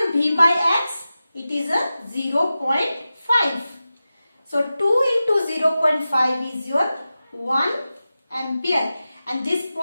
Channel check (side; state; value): both; inverted; correlation -0.93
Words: V by X? It is a 0.5. So 2 into 0.5 is your 1 ampere. And this